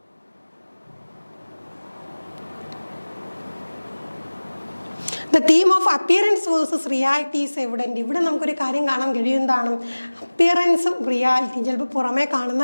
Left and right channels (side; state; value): both; inverted; correlation -1.00